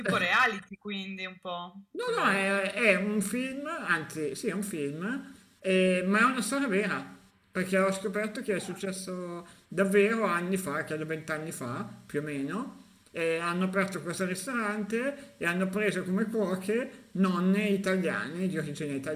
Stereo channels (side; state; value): both; identical; correlation 1.00